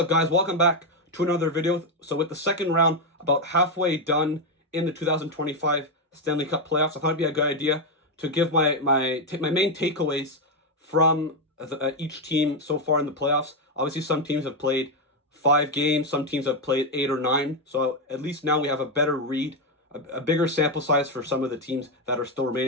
guys? Welcome back to another video. So with the second round about halfway done in the 2025 Stanley Cup playoffs, I thought it'd be a good idea to give my main takeaways from each team so far in the playoffs. Obviously, some teams have played 5 games, some teams have played 8 or 9. So at least now we have a better read, a bigger sample size for some of the teams that are still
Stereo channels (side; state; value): both; normal; correlation 0.05